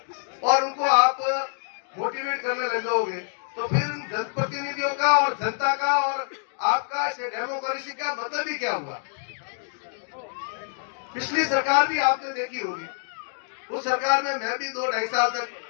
और उनको आप मोटिवेट करने लग जाओगे, तो फिर जनप्रतिनिधियों का और जनता का और आपका डेमोक्रेसी का मतलब ही क्या हुआ। पिछली सरकार भी आपने देखी होगी, उस सरकार में मैं भी 2-2.5 साल तक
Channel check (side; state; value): right; silent; digital silence